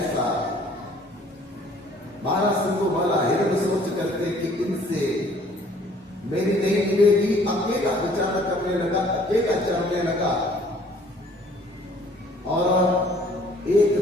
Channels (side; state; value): both; normal; correlation 0.56